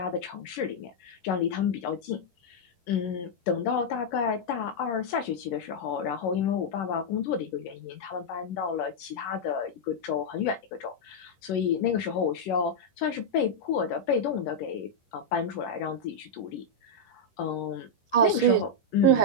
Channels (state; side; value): late; right; 11 ms